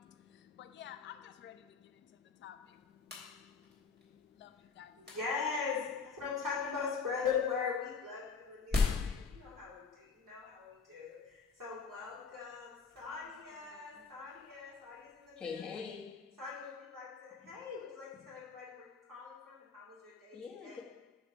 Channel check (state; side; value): quieter; right; 5.3 dB